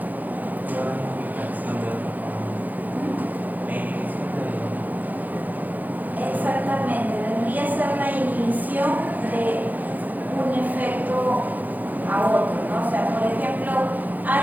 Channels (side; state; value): left; late; 0.082 ms